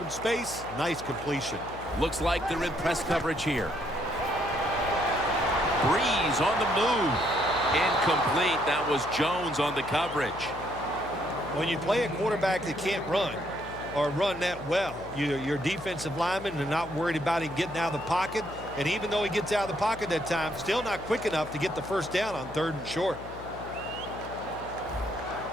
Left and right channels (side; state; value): left; noise; hum, 15 dB below the sound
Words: space. Nice completion. Looks like they're in press coverage here. Breeze on the move. Incomplete. That was Jones on the coverage. When you play a quarterback that can't run or run that well, your defensive linemen are not worried about him getting out of the pocket. And even though he gets out of the pocket that time, still not quick enough to get the 1st down on 3rd and short.